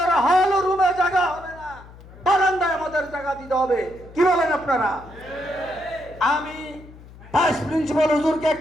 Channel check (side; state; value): left; noise; hum, 20 dB below the sound